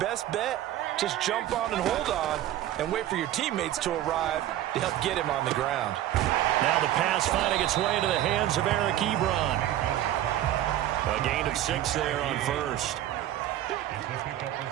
bet, just jump on and hold on and wait for your teammates to arrive to help get him on the ground. Now the pass finding its way into the hands of Eric Ebron. A gain of 6 there on first.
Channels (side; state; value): left; quieter; 13.0 dB